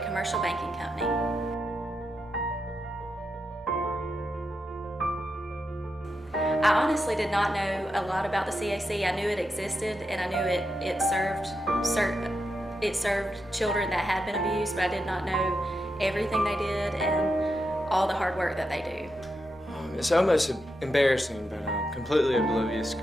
Commercial Banking Company. I honestly did not know a lot about the CAC. I knew it existed, and I knew it served children that had been abused, but I did not know everything they did and all the hard work that they do. It's almost embarrassing, but I'm completely oblivious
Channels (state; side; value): normal; both; correlation 0.86